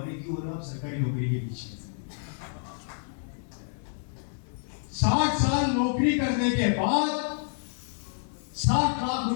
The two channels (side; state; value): right; silent; 59 dB below the other